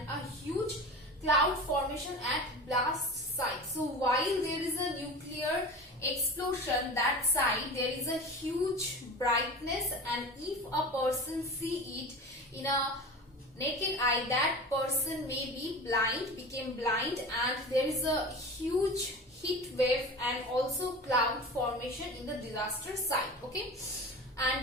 a huge cloud formation at blast site. So while there is a nuclear explosion, that side there is a huge brightness, and if a person see it in a naked eye, that person may be became blind, and there is a huge heat wave and also cloud formation in the disaster site. Okay,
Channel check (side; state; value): both; normal; correlation 0.33